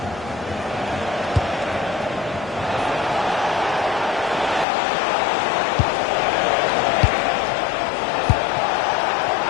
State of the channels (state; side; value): drops out; right; at 4.7 s